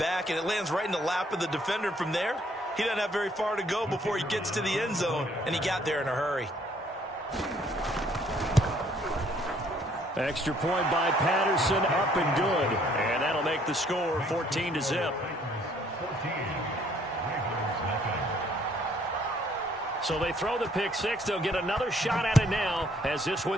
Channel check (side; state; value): both; normal; correlation 0.63